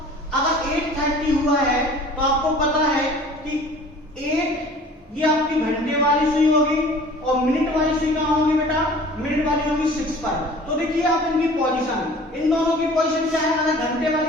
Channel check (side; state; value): both; normal; correlation 0.47